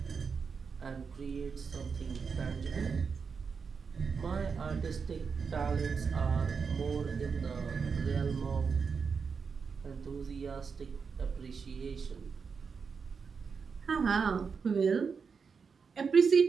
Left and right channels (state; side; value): quieter; left; 5.6 dB